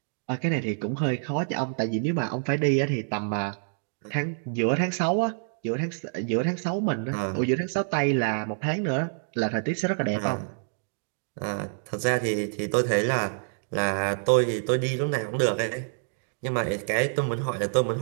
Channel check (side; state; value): left; silent; digital silence